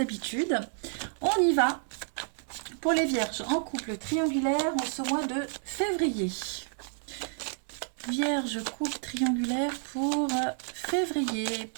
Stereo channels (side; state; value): left; silent; 58 dB below the other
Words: On y va pour les vierges en couple triangulaire en ce mois de février. Vierge, couple triangulaire pour février.